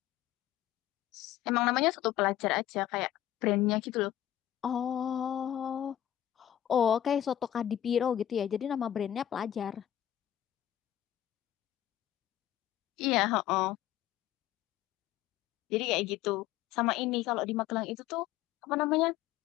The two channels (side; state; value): right; quieter; 12.1 dB